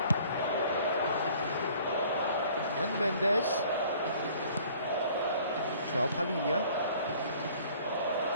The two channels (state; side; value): inverted; both; correlation -0.54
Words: And Mendes. João Palhinha.